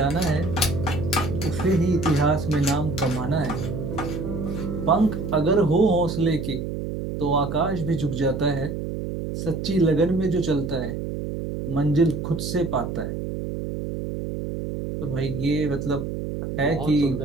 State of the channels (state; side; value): noise; right; hum, 5 dB below the sound